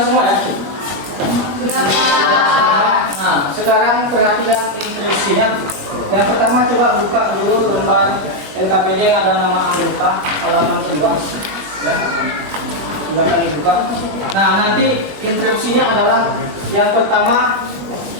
semua ya? Sudah, Pak. Nah, sekarang perhatikan instruksinya. Yang pertama coba buka dulu lembar LKPD yang ada nama anggota halaman kedua. Ya, silakan dibuka. Nah, nanti instruksinya adalah yang pertama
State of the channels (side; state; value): left; late; 21 ms